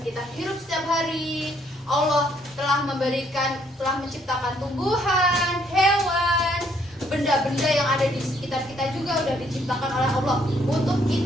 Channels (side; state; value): both; normal; correlation 0.68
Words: kita hirup setiap hari. Allah telah menciptakan tumbuhan, hewan, benda-benda yang ada di sekitar kita juga udah diciptakan oleh Allah untuk